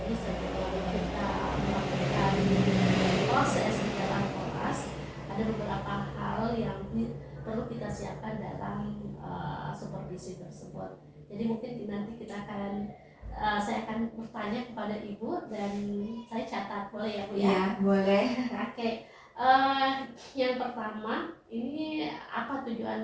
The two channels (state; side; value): identical; both; correlation 1.00